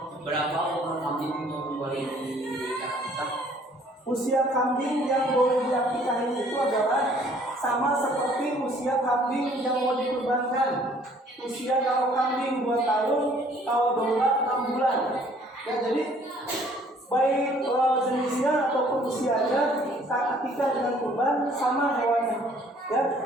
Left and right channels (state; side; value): normal; both; correlation 0.58